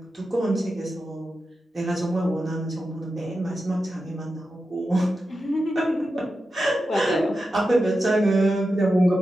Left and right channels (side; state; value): both; normal; correlation 0.90